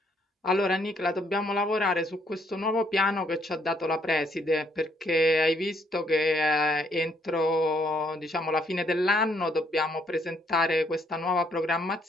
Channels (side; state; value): both; normal; correlation 0.69